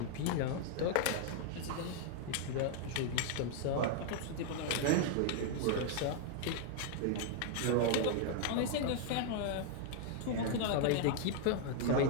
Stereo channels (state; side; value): different; both; correlation 0.00